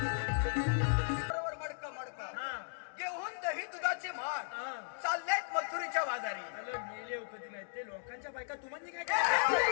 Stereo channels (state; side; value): silent; right; digital silence